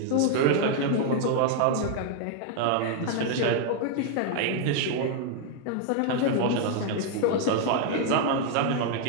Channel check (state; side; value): different; both; correlation 0.00